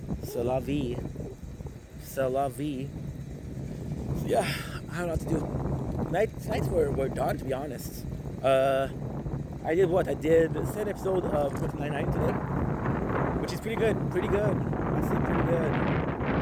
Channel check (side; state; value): both; identical; correlation 1.00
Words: C'est la vie. C'est la vie. Yeah, I don't know what to do. Nights were done, to be honest. I I did what? I did the second episode of Brooklyn Nine-Nine today, which is pretty good. Pretty good. I say pretty good. I'm